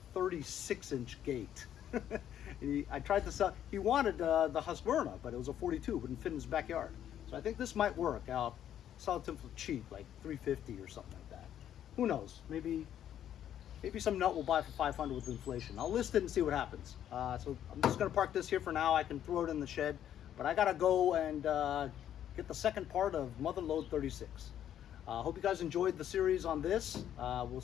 36-inch gate. I tried to sell. He wanted the Husqvarna, but it was a 42. Wouldn't fit in his backyard. So I think this might work. I'll sell it to him for cheap, like $350 or something like that. Who knows? Maybe some nut will buy for $500 with inflation. I'll list it and see what happens. So I'm just gonna park this here for now. I can throw it in the shed, but I gotta go and get the second part of Mother Load 36. Hope you guys enjoyed the series on this. We'll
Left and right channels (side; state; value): right; quieter; 10.5 dB